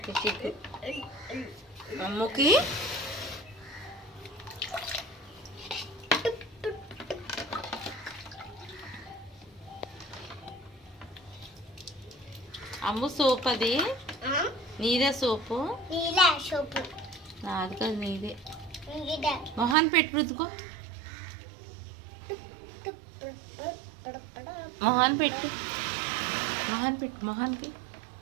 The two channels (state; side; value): drops out; left; at 19.8 s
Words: చిక్కు అమ్ముకి అమ్ము సోప్ అది నీదే సోపు నాది కాదు నీదే మొహాన్ పెట్టి రుద్దుకో మొహాన్ పెట్టి మొహాన్కి